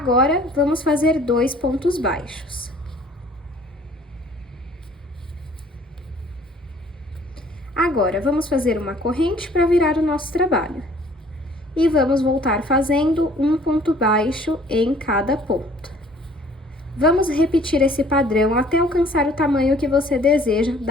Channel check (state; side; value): normal; both; correlation 0.55